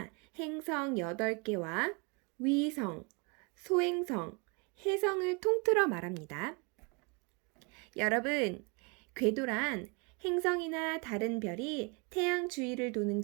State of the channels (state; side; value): quieter; left; 31.0 dB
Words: 행성 8개와 위성, 소행성, 해성을 통틀어 말합니다. 여러분, 궤도란 행성이나 다른 별이 태양 주위를 도는